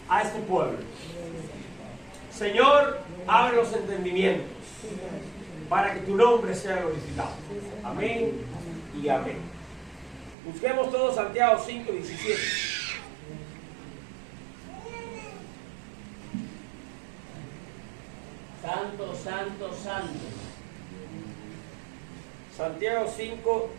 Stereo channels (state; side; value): drops out; left; at 10.4 s